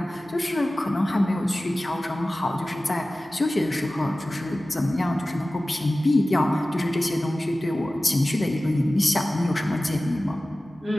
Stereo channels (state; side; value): normal; both; correlation 0.96